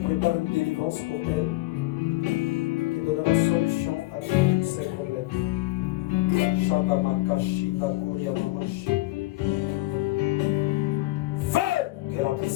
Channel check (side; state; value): right; quieter; 19.4 dB